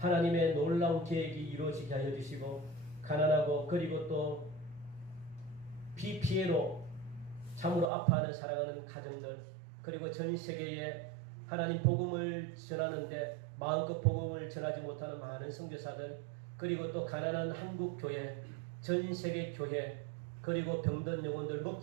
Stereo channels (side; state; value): left; drops out; at 7.9 s